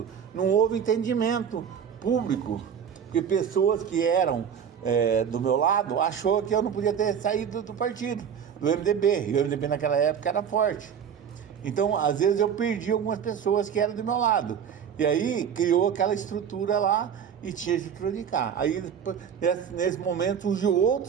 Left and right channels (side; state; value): left; quieter; 7.9 dB